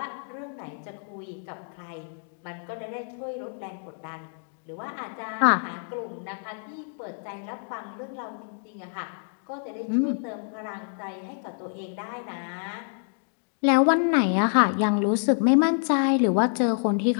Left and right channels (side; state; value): right; silent; digital silence